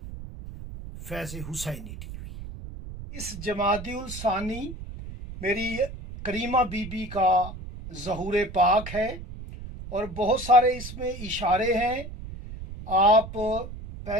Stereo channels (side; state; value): right; noise; rumble, 11 dB below the sound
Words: फैज़ हुसैनी टीवी। इस जमादिउल सानी मेरी करीमा बीबी का ज़हूर पाक है और बहुत सारे इसमें इशारे हैं। आप